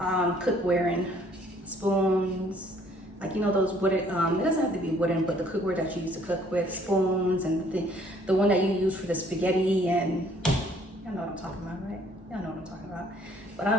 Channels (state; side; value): normal; both; correlation 0.61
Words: in. Spoons, like, you know, those wooden, it doesn't have to be wooden, but the cookware that you use to cook with, spoons, and the one that you use for the spaghetti, and y'all know what I'm talking about, right? Y'all know what I'm talking about. But